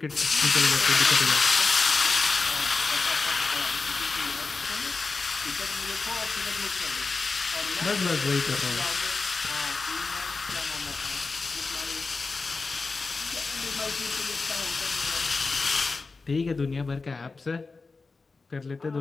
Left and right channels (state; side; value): quieter; right; 4.1 dB